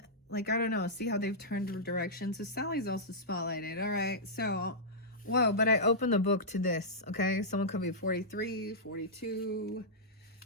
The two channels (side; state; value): both; normal; correlation -0.12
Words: like, I don't know, see how they've turned direction. So Sally's also spotlighted. All right. So, whoa, but I opened the book to this, okay? Someone could be 43, 42.